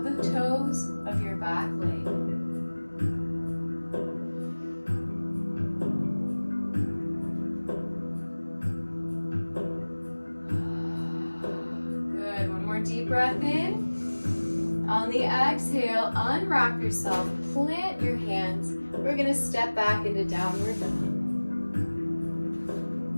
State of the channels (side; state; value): both; inverted; correlation -1.00